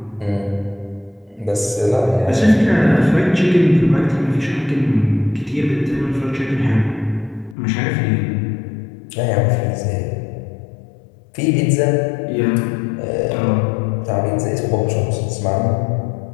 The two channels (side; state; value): right; drops out; at 7.6 s